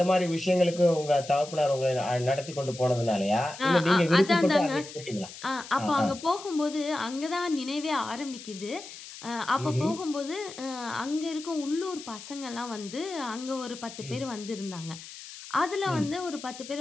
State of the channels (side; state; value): left; noise; hiss, 14 dB below the sound